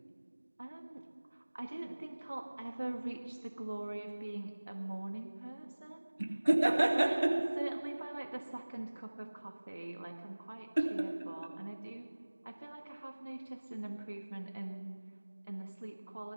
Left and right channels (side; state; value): both; inverted; correlation -1.00